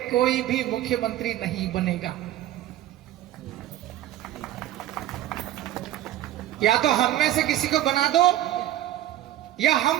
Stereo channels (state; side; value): quieter; left; 13.5 dB